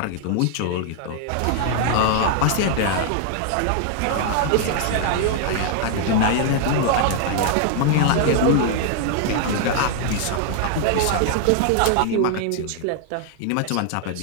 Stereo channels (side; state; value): both; different; correlation -0.01